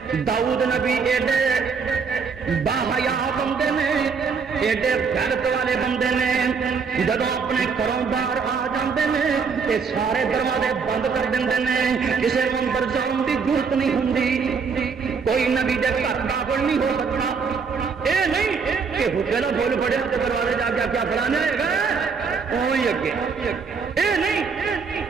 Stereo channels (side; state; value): left; quieter; 5.5 dB